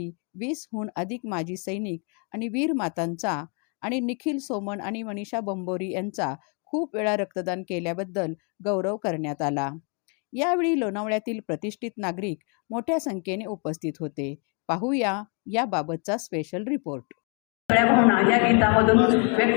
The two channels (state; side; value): quieter; right; 37.1 dB